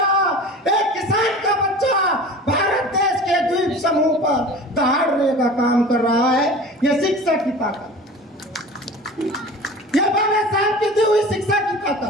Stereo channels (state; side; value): normal; both; correlation 0.38